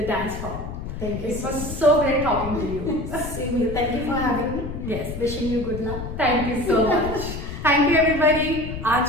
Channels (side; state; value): left; noise; rumble, 8 dB below the sound